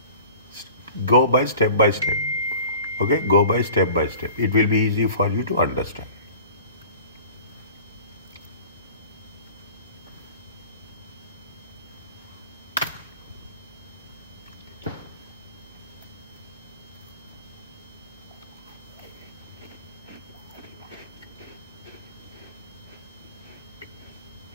Go by step by step. Okay, go by step by step. It will be easy for you to understand.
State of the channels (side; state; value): both; inverted; correlation -0.42